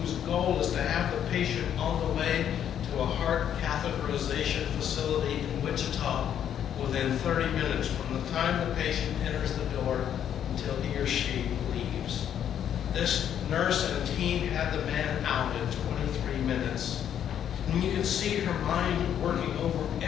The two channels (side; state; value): right; quieter; 9.6 dB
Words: goal is to have the patient on the way to a heart catheterization facility in Wichita within 30 minutes from the time the patient enters the door until he or she leaves. This nurse and team had the man out in 23 minutes. And you can see her mind working over